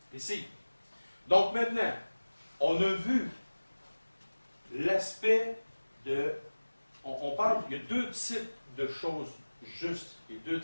Ici. Donc maintenant, on a vu l'aspect de... On parle, il y a deux types de choses justes et deux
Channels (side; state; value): both; inverted; correlation -1.00